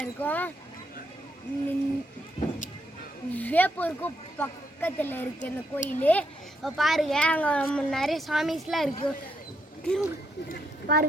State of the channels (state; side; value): normal; both; correlation 0.77